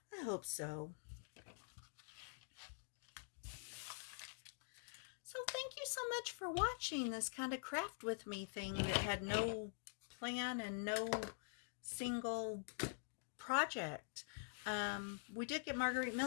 I hope so. So thank you so much for watching this kind of craft with me thing that had no plan and no single project. We did get Margarete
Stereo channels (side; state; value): right; silent; digital silence